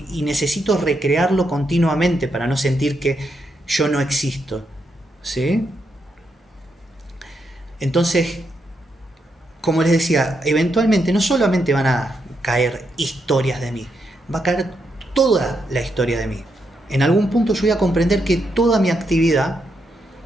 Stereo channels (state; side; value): normal; both; correlation 0.81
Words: necesito recrearlo continuamente para no sentir que yo no existo, ¿sí? Entonces, como les decía, eventualmente no solamente van a caer historias de mí, va a caer toda la historia de mí. En algún punto yo voy a comprender que toda mi actividad